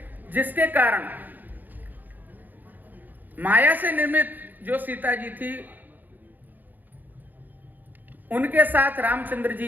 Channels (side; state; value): left; late; 0.086 ms